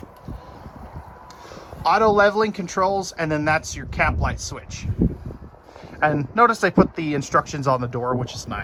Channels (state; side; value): identical; both; correlation 1.00